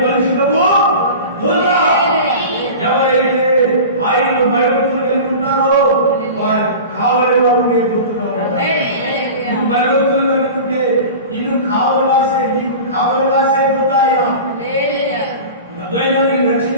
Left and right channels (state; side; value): inverted; both; correlation -0.34